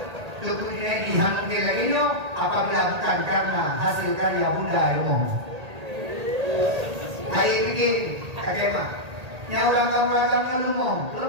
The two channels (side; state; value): left; late; 1.8 ms